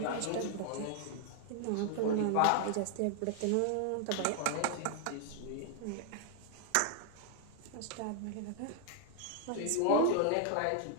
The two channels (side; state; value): both; different; correlation 0.00